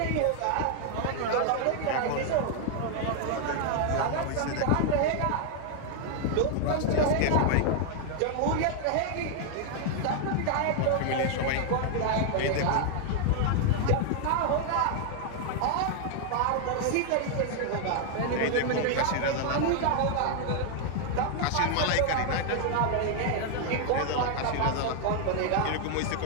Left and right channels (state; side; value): different; both; correlation 0.00